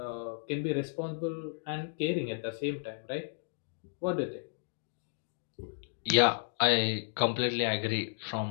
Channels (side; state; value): right; silent; digital silence